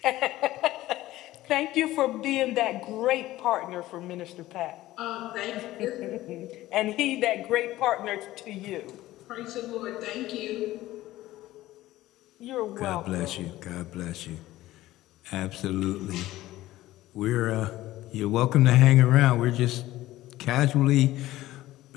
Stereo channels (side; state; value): right; quieter; 16.1 dB